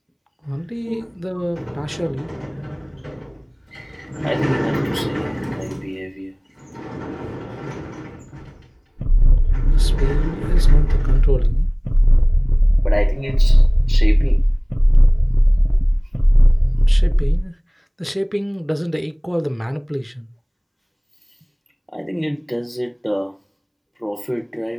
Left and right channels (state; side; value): identical; both; correlation 1.00